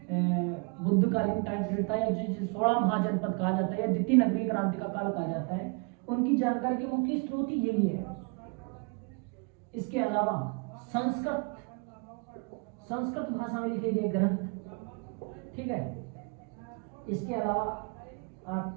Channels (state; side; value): quieter; left; 34.4 dB